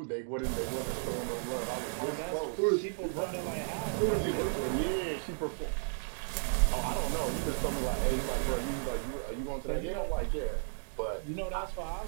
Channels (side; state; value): left; silent; digital silence